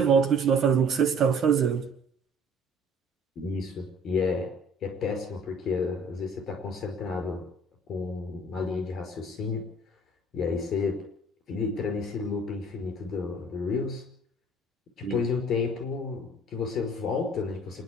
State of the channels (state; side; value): normal; both; correlation 0.52